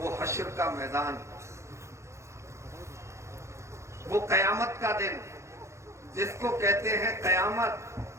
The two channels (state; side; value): late; left; 0.14 ms